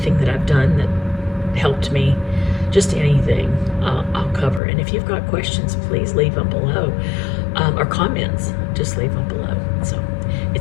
that I've done that helped me, just anything I'll cover. And if you've got questions, please leave them below. or comments, just leave them below. So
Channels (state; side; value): drops out; right; at 4.6 s